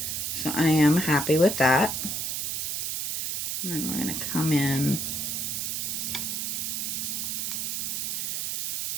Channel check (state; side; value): noise; right; hiss, 1 dB below the sound